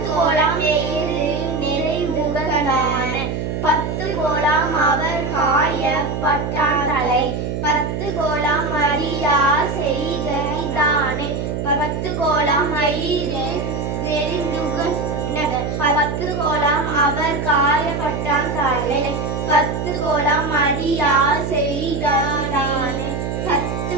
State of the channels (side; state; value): right; noise; hum, 3 dB below the sound